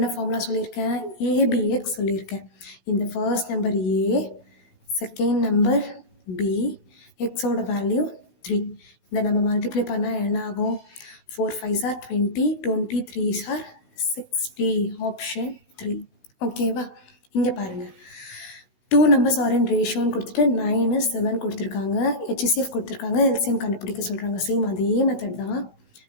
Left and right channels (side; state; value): right; late; 16 ms